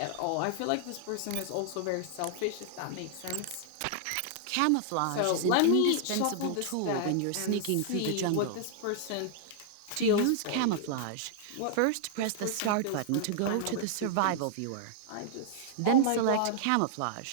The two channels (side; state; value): both; different; correlation -0.01